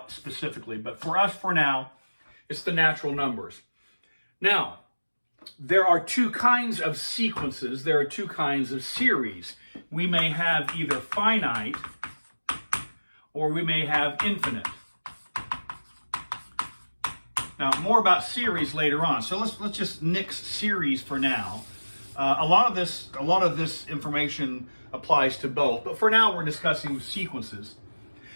specifically. But for us, for now, it's the natural numbers. Now, there are two kinds of sequences. There are two kinds of series. We may have either finite or we may have infinite. Now, more about series later on. So let's just nix series for now. A lot of this information applies to both, but for now we're discussing sequences.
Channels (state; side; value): inverted; both; correlation -1.00